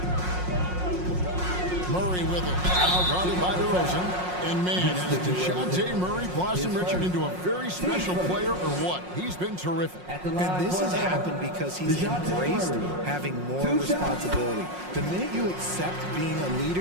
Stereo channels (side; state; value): left; late; 5.5 ms